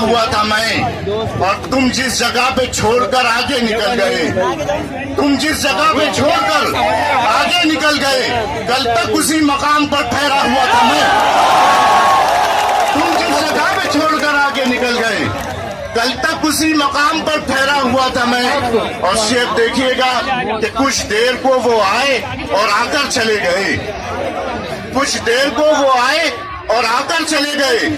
था मैं। और तुम जिस जगह पे छोड़कर आगे निकल गए, तुम जिस जगह पे छोड़कर आगे निकल गए, कल तक उसी मकाम पर ठहरा हुआ था मैं। तुम जिस जगह पे छोड़कर आगे निकल गए, कल तक उसी मकाम पर ठहरा हुआ था मैं। और शेर देखिएगा कि कुछ देर को वो आए और आकर चले गए, कुछ देर को वो आए और आकर चले गए,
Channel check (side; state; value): both; identical; correlation 1.00